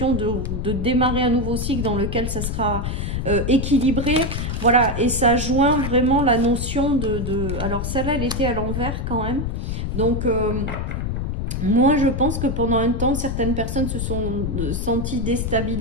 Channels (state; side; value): noise; left; rumble, 2 dB below the sound